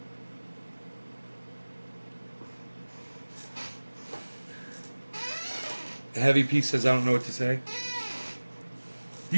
Heavy P says, I don't know what to say.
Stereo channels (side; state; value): both; inverted; correlation -1.00